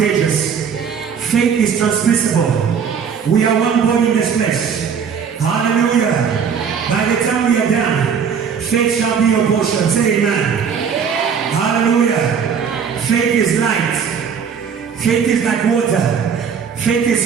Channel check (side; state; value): left; quieter; 6.8 dB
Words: Faith is transmissible. We are one body in this place. Hallelujah. By the time we are done, faith shall be your portion. Say amen. Hallelujah. Faith is light. Faith is like water. Faith